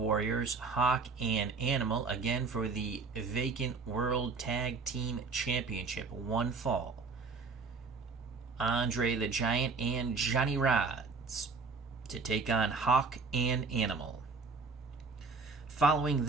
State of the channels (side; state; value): left; quieter; 4.4 dB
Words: Hawk and Animal, again for the Vacant World Tag Team Championship. One fall. Andre the Giant and Johnny Rodz to take on Hawk and Animal. Following